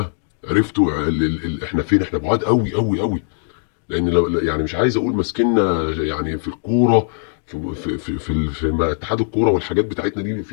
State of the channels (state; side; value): silent; right; 66 dB below the other